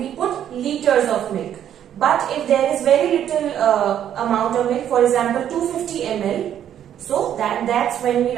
we put liters of milk. But if there is very little amount of milk, for example 250 ml, so that's when we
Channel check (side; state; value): left; quieter; 10.2 dB